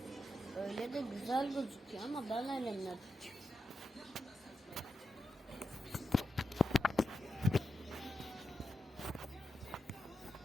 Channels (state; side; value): normal; both; correlation 0.88